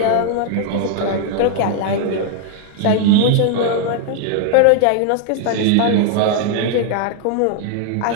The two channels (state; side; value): different; both; correlation 0.00